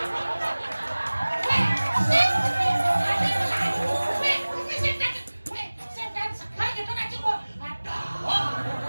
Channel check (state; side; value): inverted; both; correlation -1.00